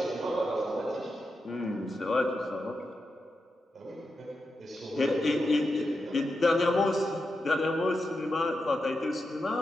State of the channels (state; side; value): normal; both; correlation 0.88